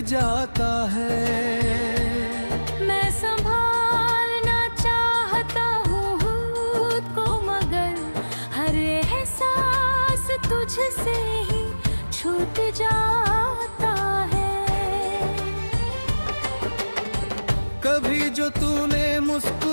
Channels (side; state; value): both; inverted; correlation -1.00